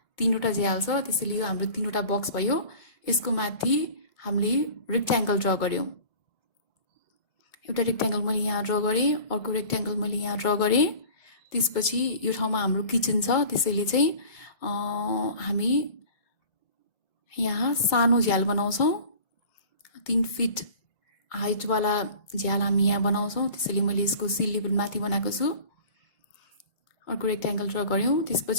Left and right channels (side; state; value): right; late; 2.2 ms